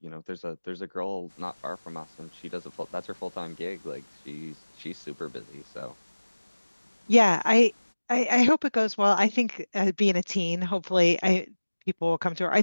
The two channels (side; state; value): both; inverted; correlation -1.00